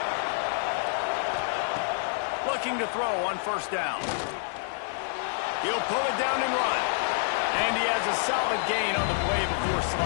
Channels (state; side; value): silent; right; digital silence